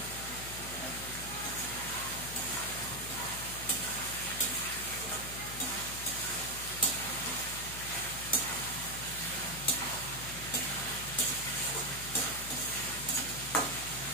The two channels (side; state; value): left; noise; hum, 10 dB below the sound